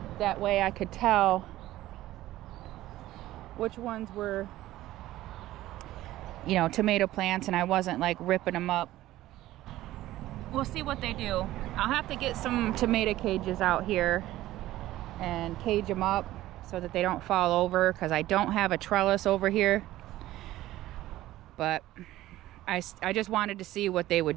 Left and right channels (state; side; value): quieter; left; 15.4 dB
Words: That way I could tell which ones were, you know, tomato plants, and I wasn't like ripping them up. We'll see what they do. I'll have to get some tomato cages out here and cage them up so that they don't fall over, because I don't have a trellis over here. But I just wanted to see what they